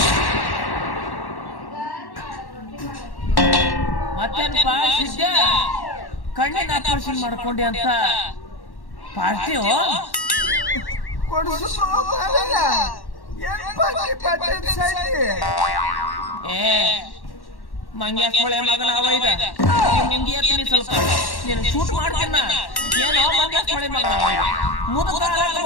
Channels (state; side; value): late; right; 1.1 ms